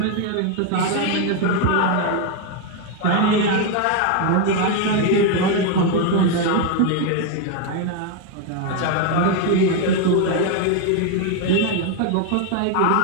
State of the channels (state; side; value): different; both; correlation 0.01